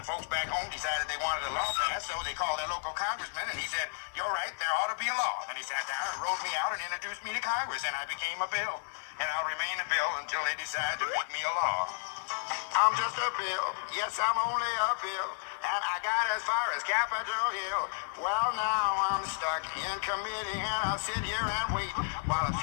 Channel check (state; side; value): silent; right; digital silence